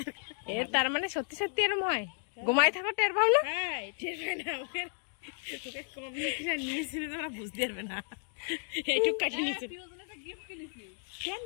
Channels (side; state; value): right; silent; 56 dB below the other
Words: এর তার মানে সত্যি সত্যি এরম হয়? ঘুমায় থাকো টের পাও না? টের পাই না, ওকে কম নিয়েছিল তোরা বুঝতে পারবে না। এইটুক কাটে নিয়েছিল কেন?